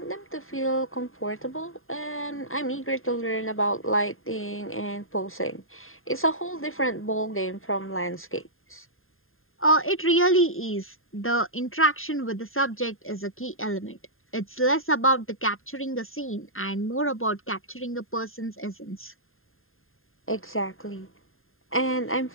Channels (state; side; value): late; right; 0.61 ms